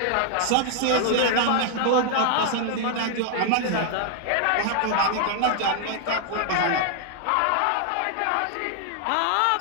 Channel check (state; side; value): different; both; correlation 0.00